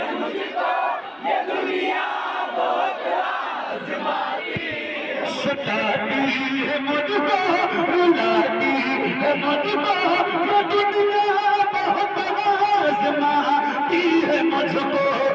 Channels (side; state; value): both; identical; correlation 1.00